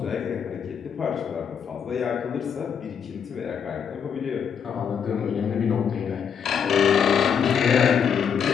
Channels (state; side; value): quieter; right; 7.4 dB